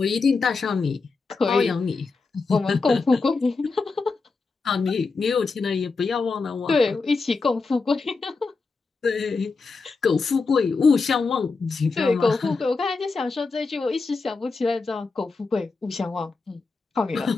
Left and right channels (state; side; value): quieter; right; 4.2 dB